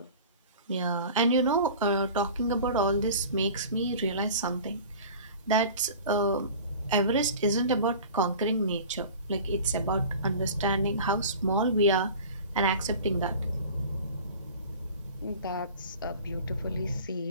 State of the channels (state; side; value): inverted; both; correlation -0.40